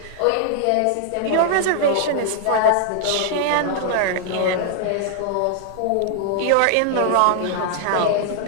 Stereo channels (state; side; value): different; both; correlation 0.00